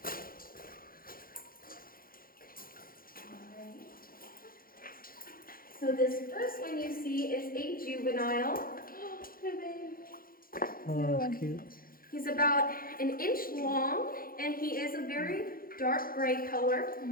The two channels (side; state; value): right; late; 0.42 ms